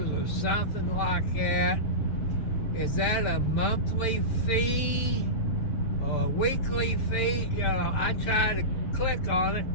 or something like that. Is that a monthly fee? A weekly fee? You know, I try to click on it,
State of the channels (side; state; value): right; late; 7.4 ms